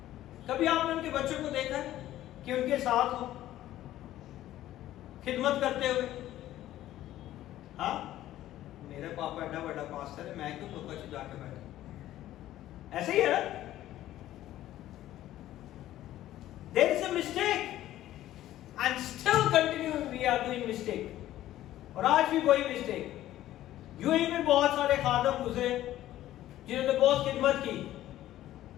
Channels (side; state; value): right; quieter; 13.8 dB